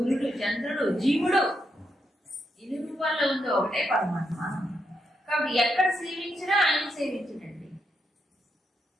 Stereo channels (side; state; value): both; normal; correlation 0.81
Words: చంద్రుడు, జీవుడు. 8 రూపాయల్లో ఉందో ఒకటే పరమాత్మ. కాబట్టి ఎక్కడ సేవించినా ఆయన సేవించడండి.